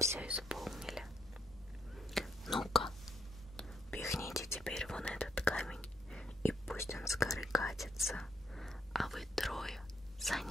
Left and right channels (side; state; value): both; normal; correlation 0.73